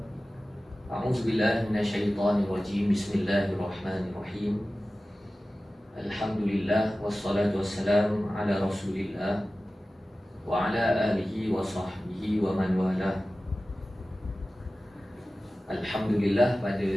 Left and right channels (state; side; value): normal; both; correlation 0.96